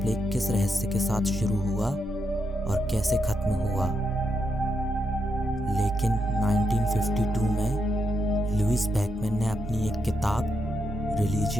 किस रहस्य के साथ शुरू हुआ और कैसे खत्म हुआ। लेकिन 1952 में लुइस बैकमैन ने अपनी एक किताब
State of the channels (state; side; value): normal; both; correlation 0.82